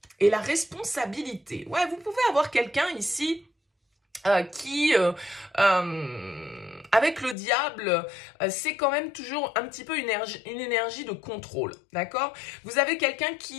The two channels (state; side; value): drops out; right; at 7.4 s